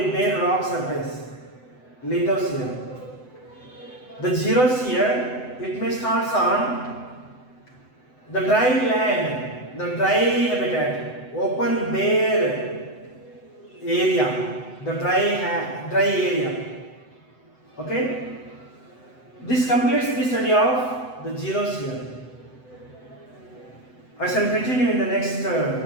bare rock surface, lithosphere. The zeros here, it may start on the dry land, the dry habitat, open bare area, the dry area. Okay? This completes the study of the zeros here. I shall continue in the next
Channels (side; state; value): right; late; 7.9 ms